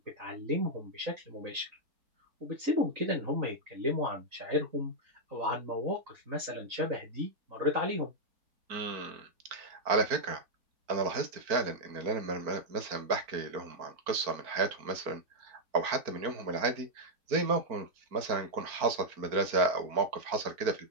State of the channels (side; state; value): left; late; 4.4 ms